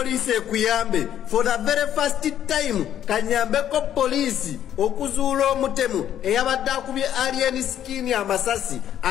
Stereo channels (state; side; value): quieter; right; 10.6 dB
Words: ekuyambe for the very first time kanyambeko polisi okuzuula omutemu eyabadde akubye Alien Skin amasasi